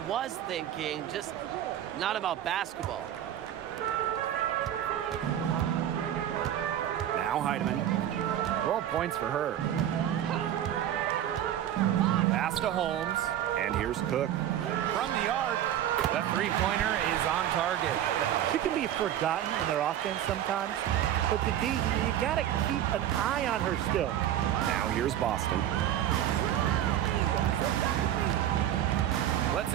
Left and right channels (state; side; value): quieter; left; 11.3 dB